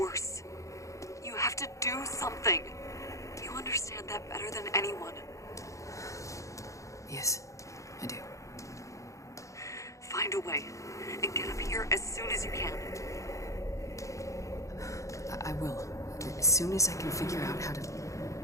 worse. You have to do something. You understand that better than anyone. Yes, I do. Find a way and get up here as soon as you can. I will. As soon as I can figure out how to...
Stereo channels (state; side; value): late; right; 0.15 ms